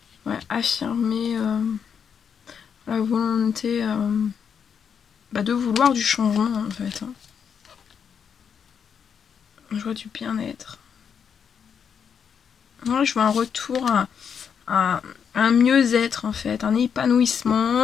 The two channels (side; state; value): right; quieter; 7.2 dB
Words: affirmer la volonté de vouloir du changement en fait. Hein. Je vois du bien-être. Ouais, je vois un retour à un mieux-être en fait, un